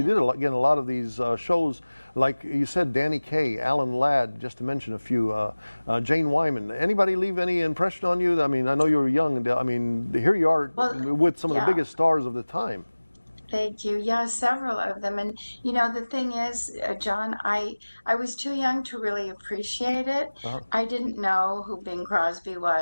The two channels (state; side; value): inverted; both; correlation -1.00